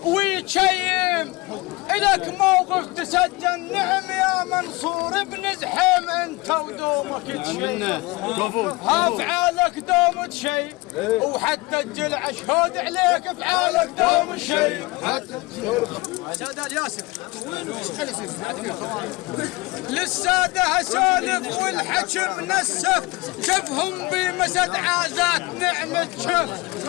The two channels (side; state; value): right; quieter; 23.2 dB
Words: ويتشيم. إلك موقف تسجل نعم يا منصور ابن زحيم انت ودون. دومك شيء افعالك دوم شيء وحتى الجلع شهود عليك افعالك دوم شيء سادة الياسر للسادة اسولف والحكم نسف شفهم بمسد عازات نعمة شف